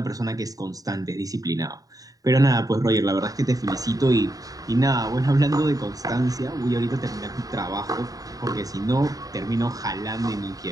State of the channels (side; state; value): left; late; 0.18 ms